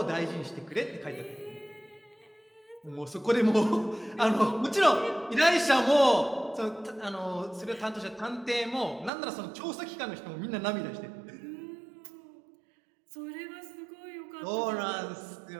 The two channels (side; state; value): left; drops out; at 9.1 s